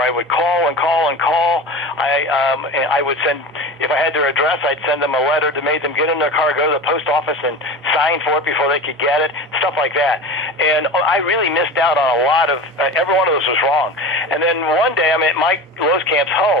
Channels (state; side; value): normal; both; correlation 0.30